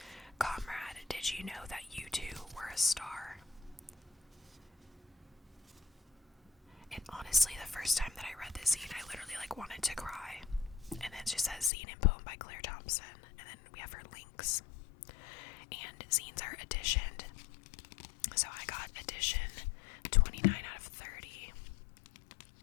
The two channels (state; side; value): drops out; right; at 11.7 s